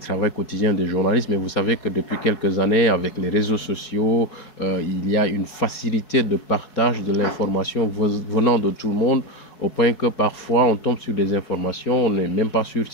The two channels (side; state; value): right; late; 4.7 ms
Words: quotidien des journalistes. Mais vous savez que depuis quelques années, avec les réseaux sociaux, il y a une facilité de partage de l'information venant de tout le monde, au point que parfois on tombe sur des informations, on n'est même pas sûr